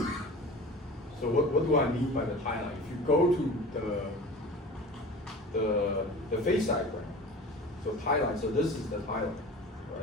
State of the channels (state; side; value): normal; both; correlation 0.38